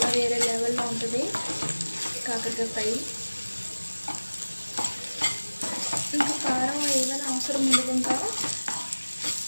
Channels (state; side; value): inverted; both; correlation -1.00